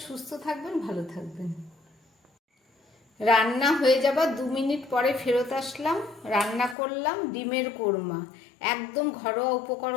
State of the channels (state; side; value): drops out; right; at 6.8 s